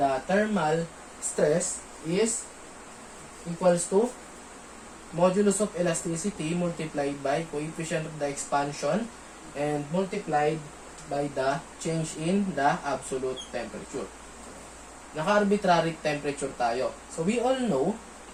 thermal stress is equals to modulus of elasticity multiplied by coefficient of the expansion and multiplied by the change in the absolute temperature. Naka-arbitrary temperature tayo. So, we all know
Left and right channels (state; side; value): identical; both; correlation 1.00